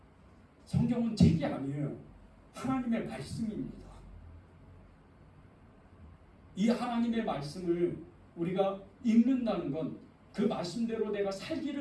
성경은 책이 아니에요. 하나님의 말씀입니다. 이 하나님의 말씀을 우리가 읽는다는 건 그 말씀대로 내가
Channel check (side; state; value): both; identical; correlation 1.00